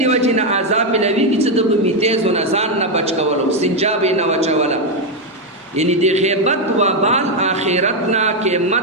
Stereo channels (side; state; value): both; normal; correlation 0.04